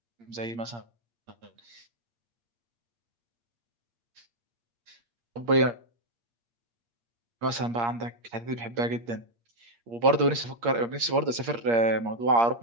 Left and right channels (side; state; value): left; late; 8.6 ms